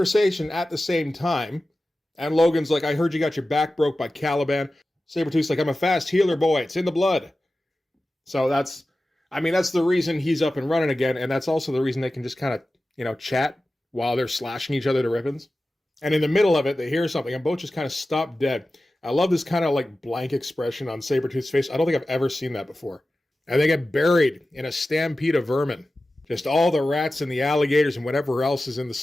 at the same time. And Logan's like, I heard you got your back broke by Caliban. Sabretooth's like, I'm a fast healer, boy. It's in the blood. So that's the reason he's up and running again, and that's also the reason they can just kind of, chat while they're slashing each other to ribbons. And in the middle of it, they hear something, and both just kind of stop dead. I love this kind of like blank expression on Sabretooth's face. I don't think I've ever seen that before. And they get buried in a stampede of vermin. Just all the rats and the alligators and whatever else is in the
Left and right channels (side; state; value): both; normal; correlation 0.95